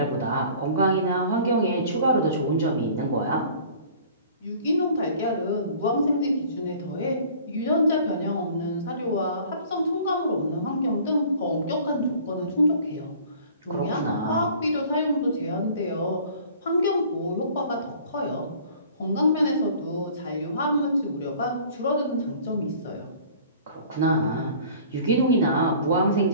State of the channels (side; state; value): both; inverted; correlation -0.49